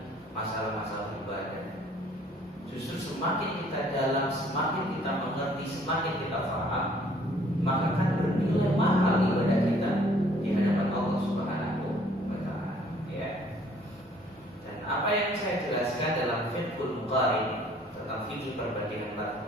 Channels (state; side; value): normal; both; correlation 0.59